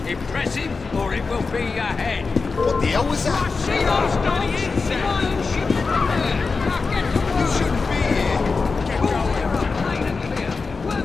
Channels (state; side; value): quieter; right; 4.4 dB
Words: Impress him, or it will be your head. What the hell was that? See those bloody insects? You shouldn't be here.